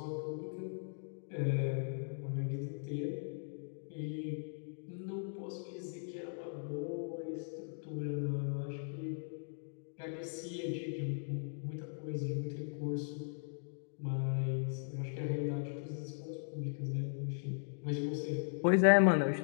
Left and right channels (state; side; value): silent; right; digital silence